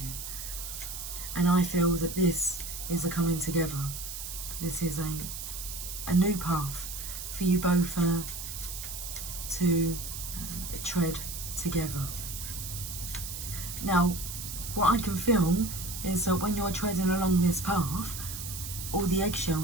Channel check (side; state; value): right; noise; hiss, 7 dB below the sound